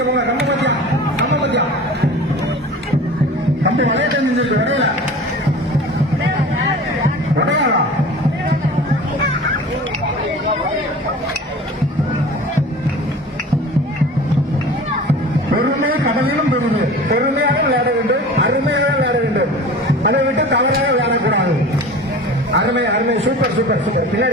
போங்க. நம்ம பத்தியா கம்பி வளைய தெரிஞ்சிருக்கு. வரையல வரையாளா பெருமை கடலிலும் பெருமை. பெருமையாக விளையாட வேண்டும், அருமையாக விளையாட வேண்டும். அதை விட்டு தவறாக விளையாடக்கூடாது. அருமை அருமை. Super super super.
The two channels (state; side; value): normal; both; correlation 0.39